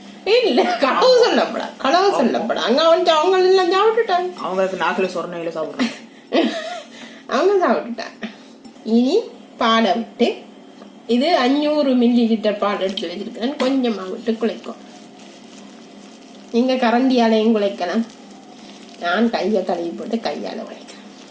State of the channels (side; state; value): both; identical; correlation 1.00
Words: இல்ல, களவு சொல்லப்படா. அங்க அவங்க எல்லாம் சாப்பிட்டுட்டாங்க. அவங்களுக்கு நாக்குல சொரணையில சாப்பிடுறாங்க, அவங்க சாப்பிட்டுட்டாங்க. இனி பாலை விட்டு, இது 500 ml பால் எடுத்து வச்சிருக்கேன். கொஞ்சமா விட்டு குழைக்கும். நீங்க கரண்டியாலையும் குழைக்கலாம். நான் கையை கழுவி போட்டு கையால குழைக்கிறேன்.